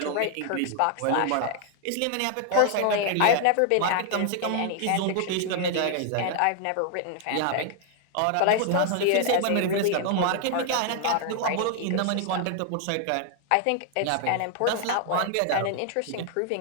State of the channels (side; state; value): both; different; correlation 0.00